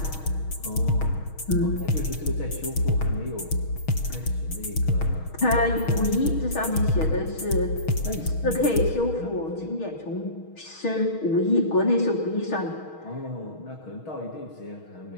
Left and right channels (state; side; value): late; right; 6.3 ms